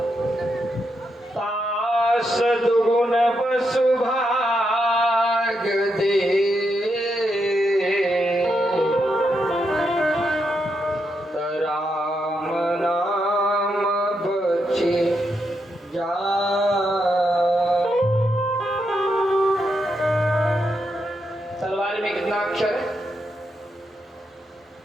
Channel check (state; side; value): normal; both; correlation 0.82